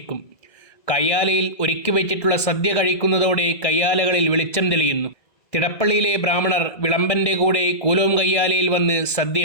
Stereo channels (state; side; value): late; right; 1.2 ms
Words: കയ്യാലയിൽ ഒരുക്കി വെച്ചിട്ടുള്ള സദ്യ കഴിക്കുന്നതോടെ കയ്യാലകളിൽ വെളിച്ചം തെളിയുന്നു. തിടപ്പള്ളിയിലെ ബ്രാഹ്മണർ വിളമ്പൻ്റെ കൂടെ കൂലോം കയ്യാലയിൽ വന്ന്